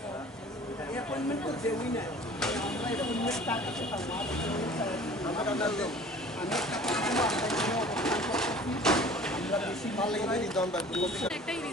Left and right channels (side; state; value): both; normal; correlation 0.46